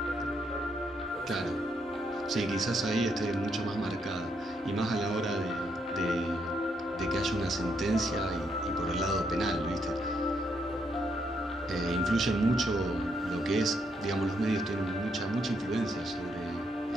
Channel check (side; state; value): both; normal; correlation 0.76